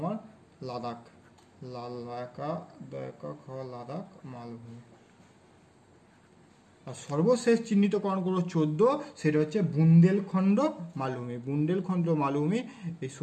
লাদাখ, লাদাখ মালভূমি। আর সর্বশেষ চিহ্নিতকরণ করো 14, সেটা হচ্ছে বুন্দেলখণ্ড মালভূমি। বুন্দেলখণ্ড মালভূমি এই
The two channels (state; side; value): identical; both; correlation 1.00